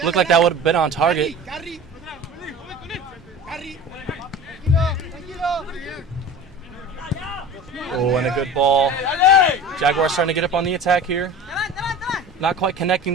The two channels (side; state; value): both; normal; correlation 0.36